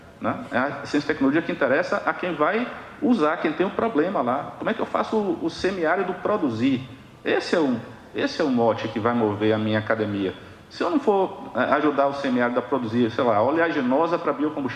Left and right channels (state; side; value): identical; both; correlation 1.00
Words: né? É a ciência e tecnologia que interessa a quem vai usar, quem tem um problema lá. Como é que eu faço o semiárido produzir? Esse é o mote que vai mover a minha academia. Se eu não for ajudar o semiárido a produzir, sei lá, oleaginosa para